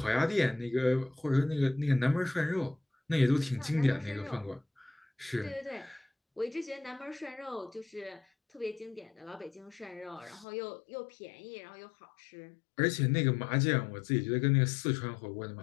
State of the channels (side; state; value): right; drops out; at 10.5 s